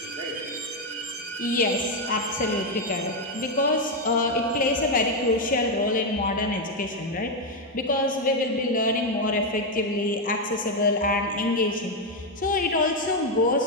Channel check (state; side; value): normal; both; correlation 0.05